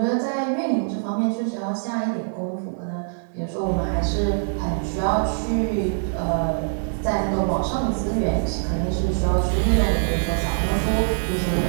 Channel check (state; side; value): silent; left; digital silence